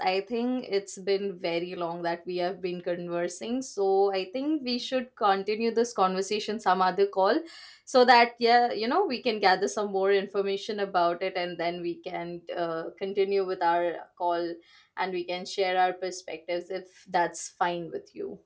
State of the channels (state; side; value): identical; both; correlation 1.00